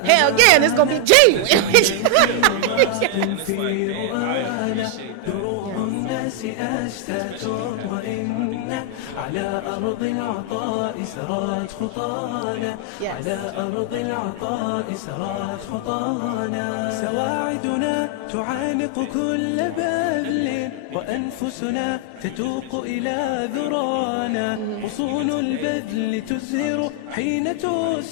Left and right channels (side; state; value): both; different; correlation 0.00